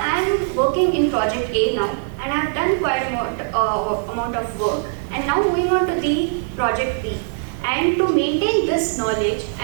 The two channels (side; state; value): left; silent; 65 dB below the other